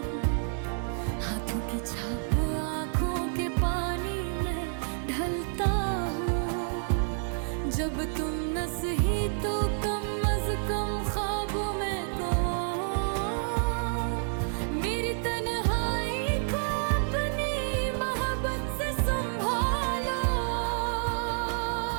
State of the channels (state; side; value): silent; left; 58 dB below the other